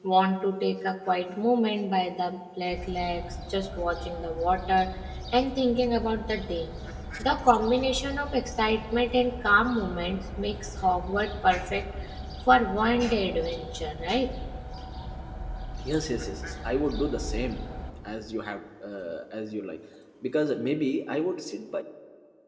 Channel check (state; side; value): identical; both; correlation 1.00